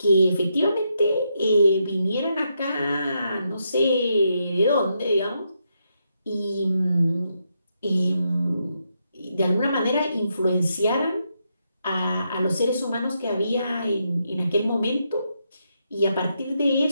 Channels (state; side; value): inverted; both; correlation -0.81